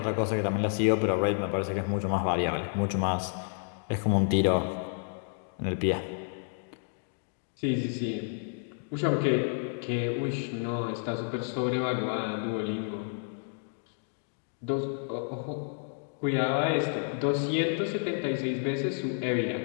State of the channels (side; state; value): right; silent; digital silence